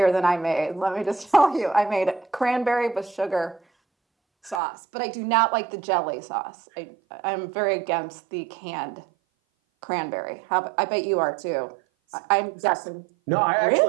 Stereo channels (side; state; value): left; drops out; at 4.6 s